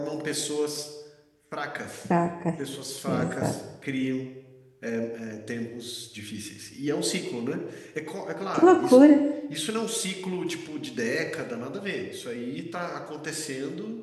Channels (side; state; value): both; identical; correlation 1.00